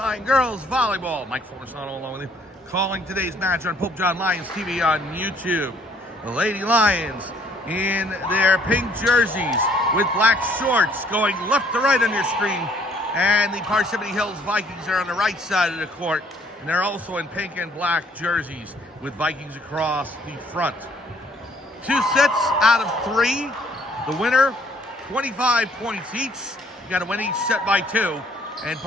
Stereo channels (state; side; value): normal; both; correlation 0.61